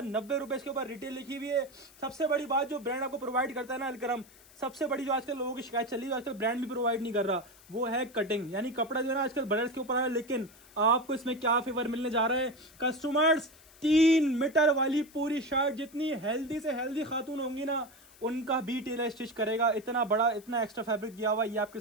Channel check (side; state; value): left; noise; hiss, 24 dB below the sound